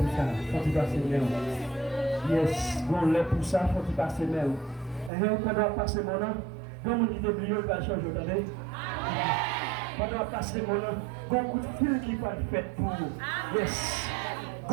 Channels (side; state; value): left; drops out; at 5.1 s